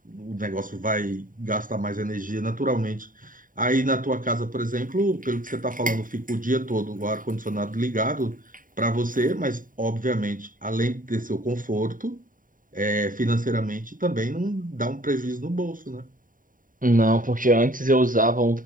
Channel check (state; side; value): late; left; 0.39 ms